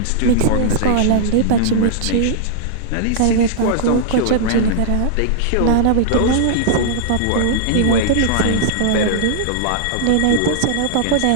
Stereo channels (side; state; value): both; different; correlation -0.01